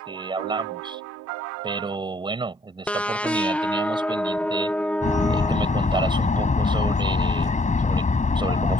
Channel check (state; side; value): normal; both; correlation 0.65